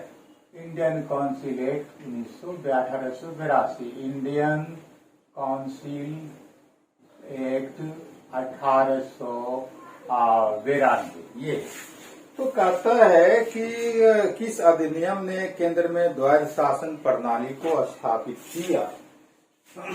Indian council act 1882, Indian council Act 1892। ये तो कहता है कि किस अधिनियम ने केंद्र में द्वैध शासन प्रणाली को स्थापित किया?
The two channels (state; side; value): identical; both; correlation 1.00